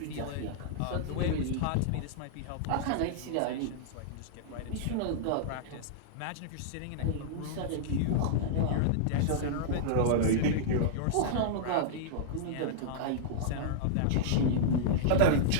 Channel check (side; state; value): both; different; correlation -0.02